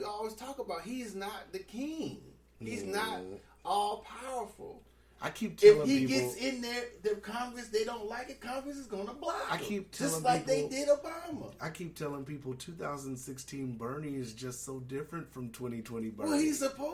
always talk about, he is not the king. He's not all powerful. I keep telling if he people, gets in there, the Congress, they don't like it, Congress is gonna block him. I keep telling just like people, they did Obama. I keep telling people 2016 Bernie is just so different from 2020 Bernie. Well, he's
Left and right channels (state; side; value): identical; both; correlation 1.00